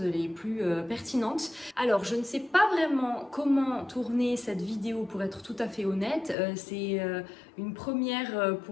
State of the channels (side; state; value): right; drops out; at 6.4 s